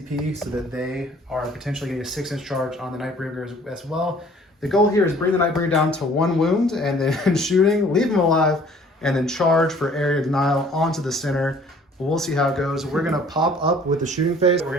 so that they are potentially getting a 6-inch charge on the Nightbringer as well. The goal here is bring the Nightbringer down to 1 wound and then shooting, leave him alive, and then charge for Area Denial onto the center. We'll see how it goes. We're going to pop up with the shooting phase. We're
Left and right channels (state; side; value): normal; both; correlation 0.54